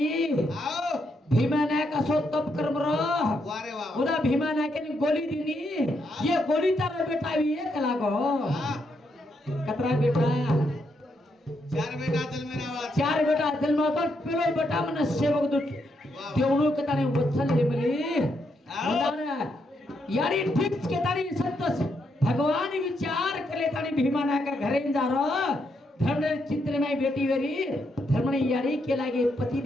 आओ भीमा नायक असो तप कर्म रो वारे वा उदा भीमा नायक ने गोली दीनी ये गोली तारा बेटा भी एक लागो हाँ कतरा बेटा चार बेटा दिल में आवा चार बेटा दिल में तो पेलो बेटा मन सेवक दु देवनु के ताने वत्सल ले मली मुदाना यारी ठीक के तारी संतोष भगवान विचार करे तानी भीमा नायक घरे जा रो धर्म चित्र में बेटी वेरी धर्म ने यारी के लागे पति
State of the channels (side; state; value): both; normal; correlation 0.79